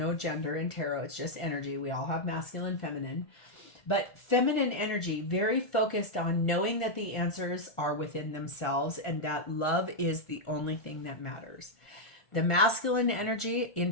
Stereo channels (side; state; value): right; late; 1.4 ms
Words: gender in tarot, it's just energy. We all have masculine, feminine. But feminine energy, very focused on knowing that the answers are within themselves and that love is the only thing that matters. The masculine energy,